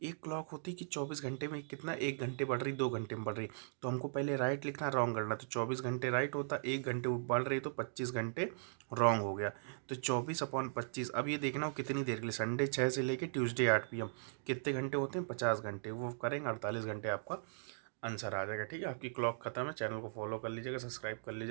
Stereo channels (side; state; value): left; silent; digital silence